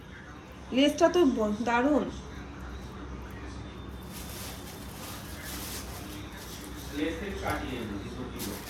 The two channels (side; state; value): both; identical; correlation 1.00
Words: লেজটা তো দারুণ।